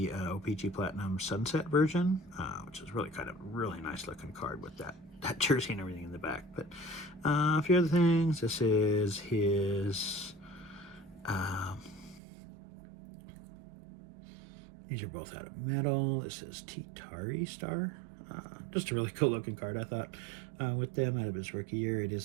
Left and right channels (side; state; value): left; drops out; at 12.2 s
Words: OPG Platinum Sunset version, which is really nice looking card with that jersey and everything in the back. But a few other things. This is his... these are both out of metal. This is Titari Star. Just a really cool looking card, I thought, with them out of his rookie year. It